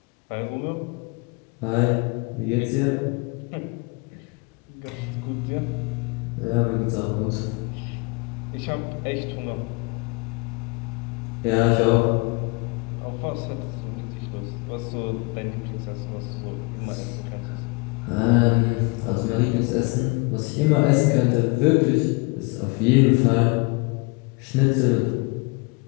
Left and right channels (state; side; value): quieter; right; 29.5 dB